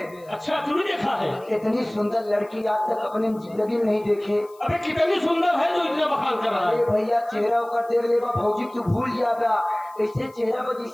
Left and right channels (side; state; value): left; noise; hiss, 28 dB below the sound